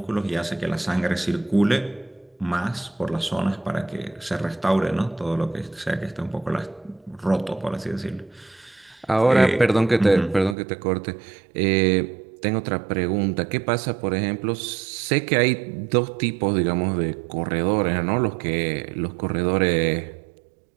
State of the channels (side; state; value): left; drops out; at 10.6 s